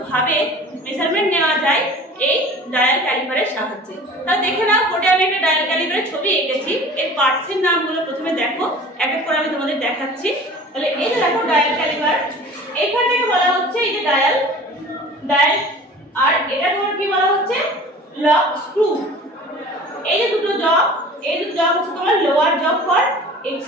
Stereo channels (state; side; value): normal; both; correlation 0.42